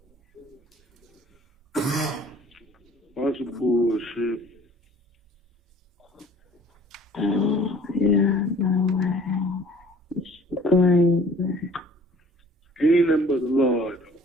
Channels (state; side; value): normal; both; correlation 0.53